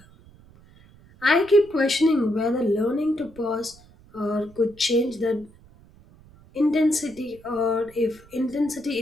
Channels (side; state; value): right; noise; rumble, 25 dB below the sound